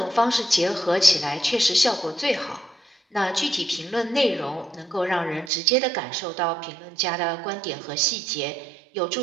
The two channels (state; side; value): drops out; left; at 5.5 s